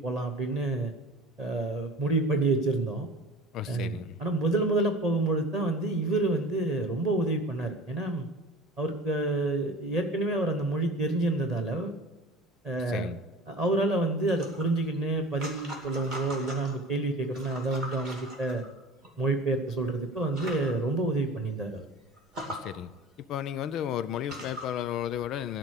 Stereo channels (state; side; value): normal; both; correlation 0.39